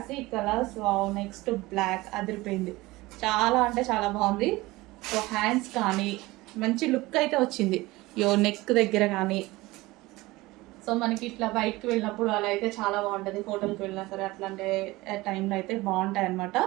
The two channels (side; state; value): left; quieter; 20.2 dB